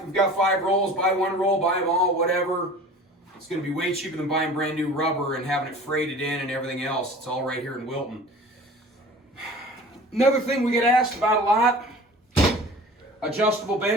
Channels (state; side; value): normal; both; correlation 0.42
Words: We've got 5 rolls. Buy 1 roll, buy them all, whatever. It's going to be way cheaper than buying brand new rubber and having it freighted in and everything else. It's all right here in Wilton. Another thing we get asked about a lot, adjustable